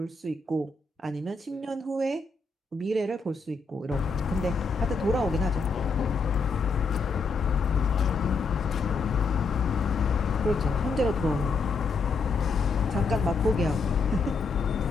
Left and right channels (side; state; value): right; quieter; 4.2 dB